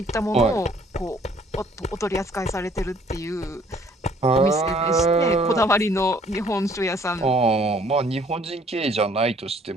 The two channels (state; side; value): normal; both; correlation 0.59